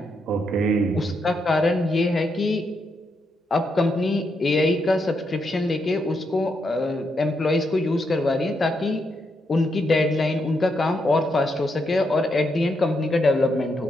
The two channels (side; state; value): both; normal; correlation 0.80